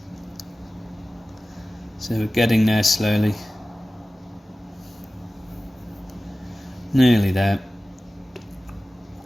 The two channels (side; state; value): both; normal; correlation 0.96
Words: So we're getting there slowly. Nearly there.